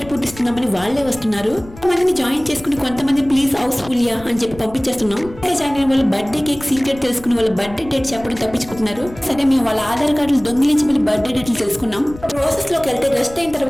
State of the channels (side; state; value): left; noise; rumble, 17 dB below the sound